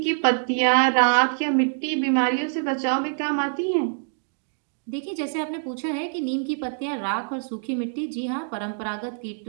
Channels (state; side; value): silent; left; digital silence